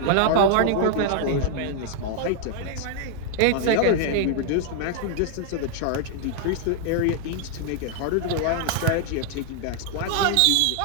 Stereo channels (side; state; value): both; different; correlation 0.00